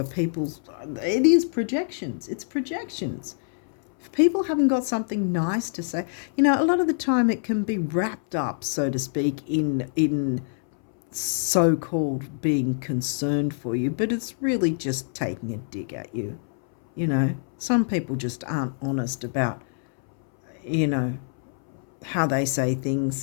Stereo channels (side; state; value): right; silent; 61 dB below the other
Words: people's. It is projections. It's projections. If people haven't got something nice to say, you know, a lot of the time it can be wrapped up, so to speak, in so-called being concerned for you, but it's really just taking a dig at you. You know, some people just aren't honest about, you know, how they say